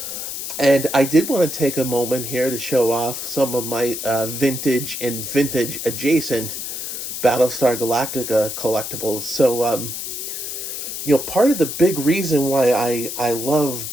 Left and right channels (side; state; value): left; noise; hiss, 6 dB below the sound